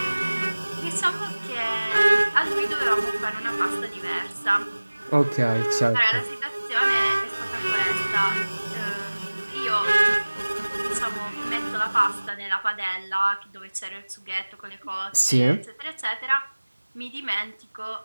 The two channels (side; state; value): both; inverted; correlation -1.00